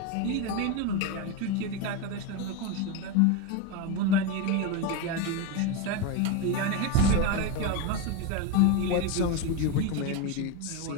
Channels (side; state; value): both; different; correlation 0.04